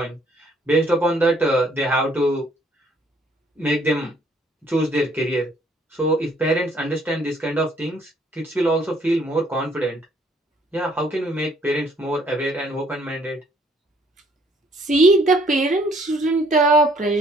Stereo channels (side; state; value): both; normal; correlation 0.63